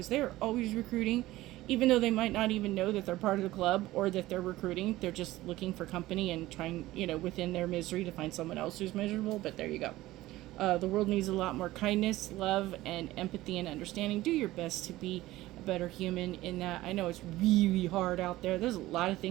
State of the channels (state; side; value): quieter; left; 17.0 dB